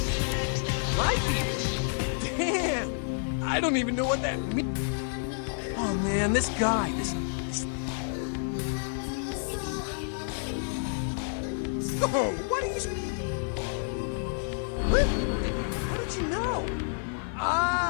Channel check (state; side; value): silent; right; digital silence